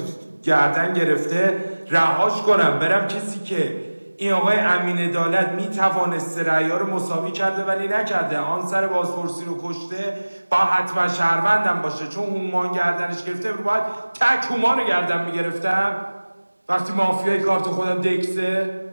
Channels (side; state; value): both; inverted; correlation -1.00